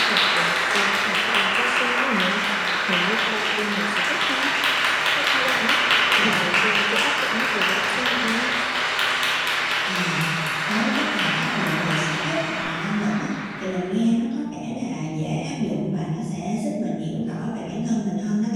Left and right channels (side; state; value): both; identical; correlation 1.00